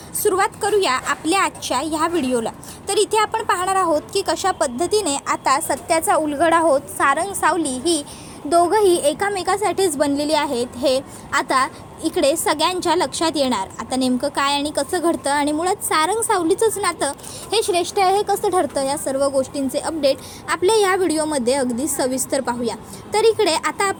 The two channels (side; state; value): both; identical; correlation 1.00